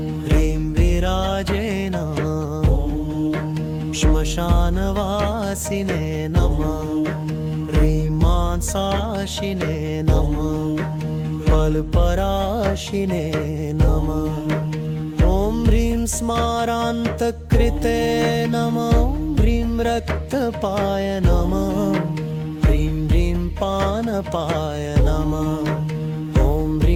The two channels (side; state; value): both; identical; correlation 1.00